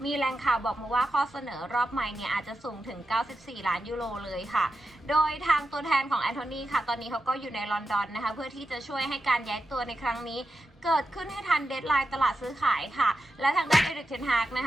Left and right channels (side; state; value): both; normal; correlation 0.90